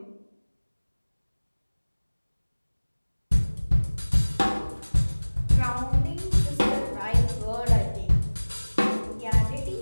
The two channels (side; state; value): both; inverted; correlation -1.00